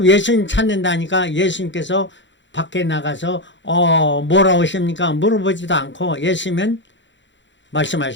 예수님 찾는다니까 예수님께서 밖에 나가서 뭐라 오십니까 물어보지도 않고 예수님은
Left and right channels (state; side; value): late; right; 0.54 ms